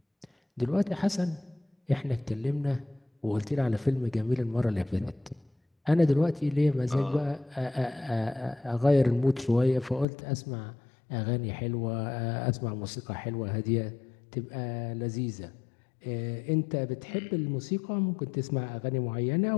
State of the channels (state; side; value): drops out; right; at 10.1 s